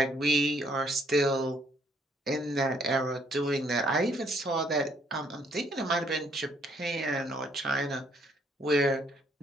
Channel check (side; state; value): both; normal; correlation 0.67